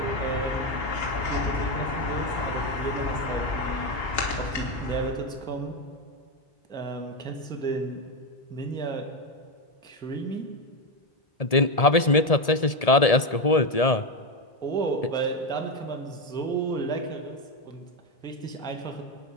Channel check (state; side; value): late; right; 1.7 ms